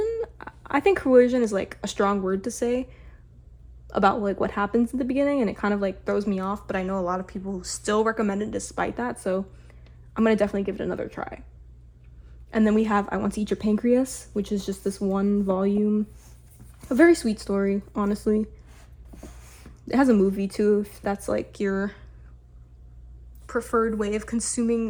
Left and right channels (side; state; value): both; identical; correlation 1.00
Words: I think coercion is like a strong word to say about like what happens in the beginning, and it kind of like throws me off, but I know a lot of people still recommend it despite that, so I'm gonna definitely give it another try. And then we have I Want to Eat Your Pancreas, which is just this one volume, a very sweet story, honestly. It has a movie too, if that's like your preferred way of